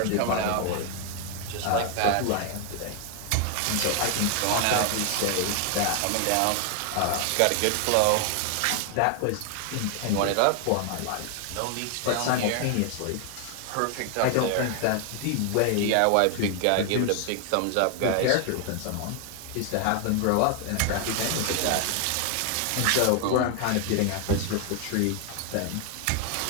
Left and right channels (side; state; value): both; different; correlation 0.00